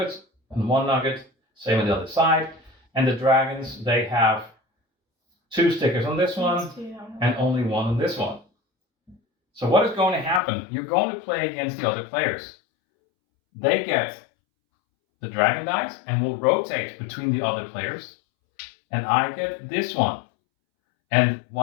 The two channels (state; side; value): drops out; right; at 10.4 s